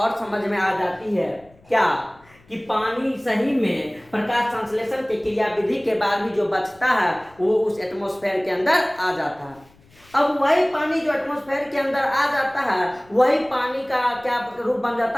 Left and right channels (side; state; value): left; noise; rumble, 29 dB below the sound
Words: समझ में आ जाती है क्या, कि पानी सही में प्रकाश संश्लेषण की क्रिया विधि के बाद भी जो बचता है वो उस एटमॉस्फेयर के अंदर आ जाता है। अब वही पानी जो एटमॉस्फेयर के अंदर आ जाता है, वही पानी का क्या रूप बन